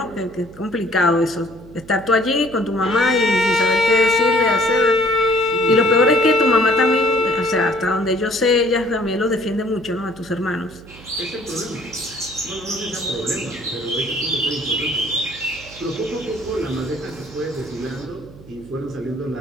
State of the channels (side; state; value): right; noise; hum, 19 dB below the sound